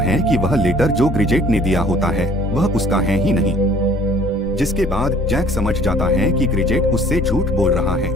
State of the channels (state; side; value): normal; both; correlation 0.54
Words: है कि वह लेटर जो ग्रिजेट ने दिया होता है वह उसका है ही नहीं। जिसके बाद जैक समझ जाता है कि ग्रिजेट उससे झूठ बोल रहा है।